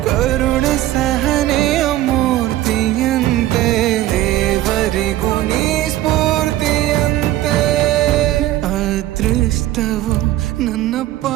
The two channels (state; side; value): quieter; left; 14.7 dB